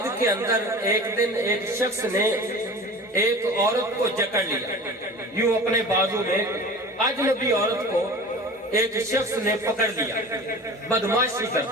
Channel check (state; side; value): normal; both; correlation 0.37